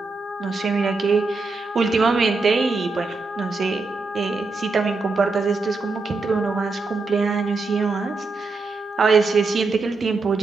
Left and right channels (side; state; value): left; quieter; 3.8 dB